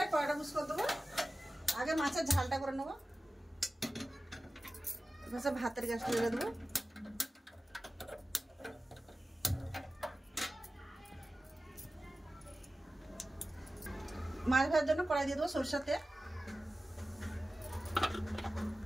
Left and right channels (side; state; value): both; normal; correlation 0.95